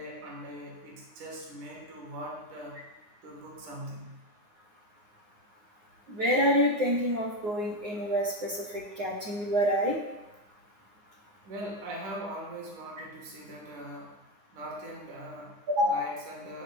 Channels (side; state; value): left; late; 9.7 ms